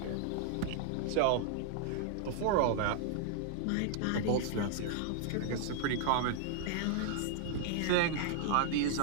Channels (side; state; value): both; different; correlation -0.01